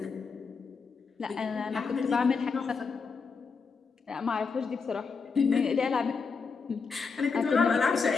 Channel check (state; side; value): quieter; right; 5.1 dB